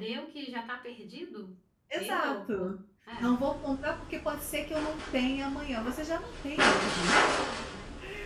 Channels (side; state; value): both; identical; correlation 1.00